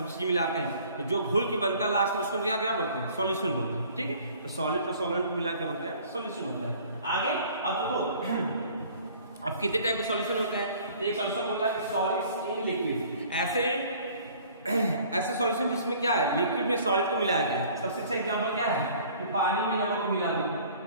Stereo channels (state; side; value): inverted; both; correlation -0.52